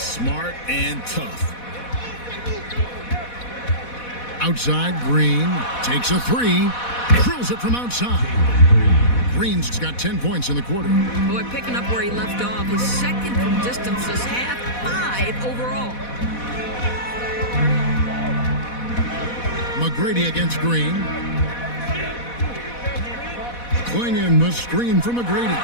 smart and tough. Outside, Green takes a 3, drills it from outside. Green's got 10 points in the quarter. Boy, picking up where he left off. His second from distance this half, 5 overall. McGrady against Green. Klingon the screen from McGrady.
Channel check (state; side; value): late; right; 4.1 ms